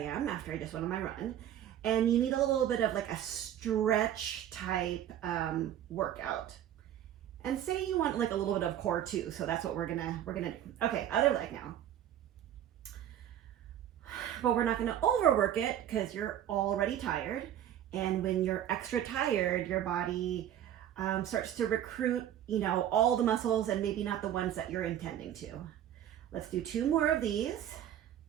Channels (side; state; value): left; quieter; 11.0 dB